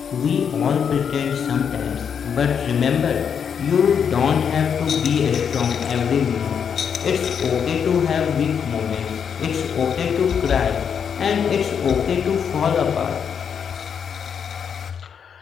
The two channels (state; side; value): quieter; right; 7.4 dB